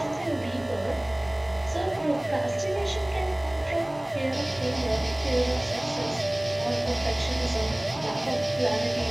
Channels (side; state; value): right; noise; hum, 26 dB below the sound